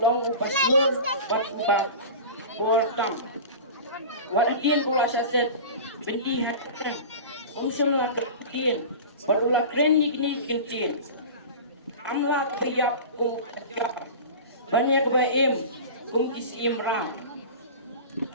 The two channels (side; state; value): both; inverted; correlation -0.33